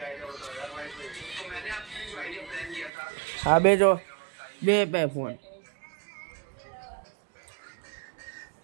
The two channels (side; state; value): left; drops out; at 2.9 s